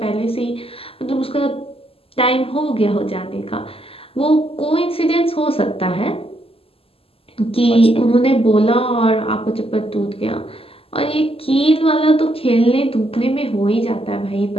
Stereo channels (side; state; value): right; late; 0.28 ms